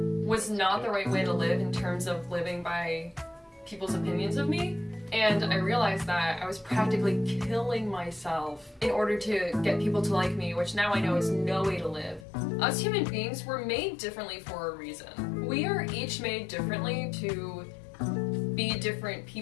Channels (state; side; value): drops out; right; at 12.2 s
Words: was not the right way to live in terms of living by people's opinions of me. And I realized that I was practically killing myself in order to get people to like me, which now I know is no way to live. Us human beings were made differently for a reason. We are each made differently to be different